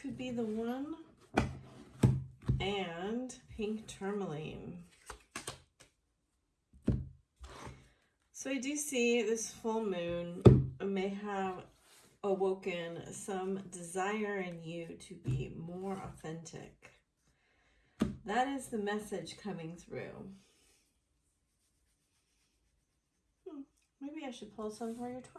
be the one. And pink tourmaline. So I do see this full moon may have awoken some desire in you to be more authentic. That is the message coming through. Maybe I should pull some for your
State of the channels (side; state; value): both; identical; correlation 1.00